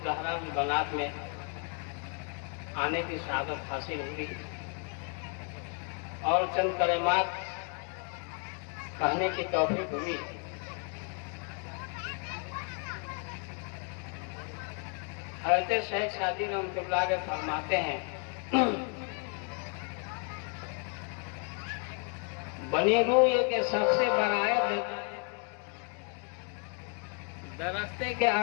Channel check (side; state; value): right; quieter; 39.0 dB